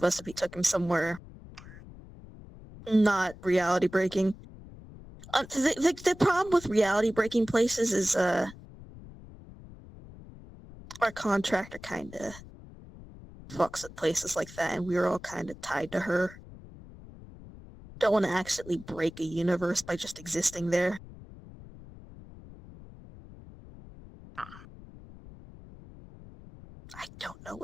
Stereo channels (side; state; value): left; noise; rumble, 18 dB below the sound